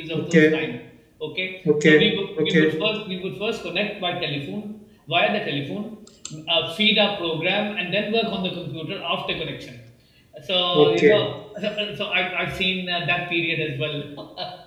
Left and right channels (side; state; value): both; identical; correlation 1.00